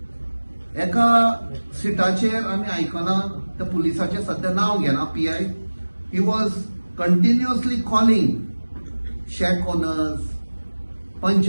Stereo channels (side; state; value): both; inverted; correlation -1.00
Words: एका सिटाचेर आमी आयकना त्या पुलिसाचें सध्या नांव घेना, PI. He was continuously calling shake owners,